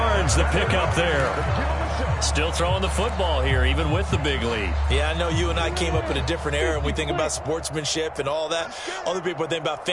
the pickup there. Still throwing the football here, even with the big lead. Yeah, I know you and I came up in a different era, and we think about sportsmanship and all that. Other people think about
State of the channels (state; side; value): identical; both; correlation 1.00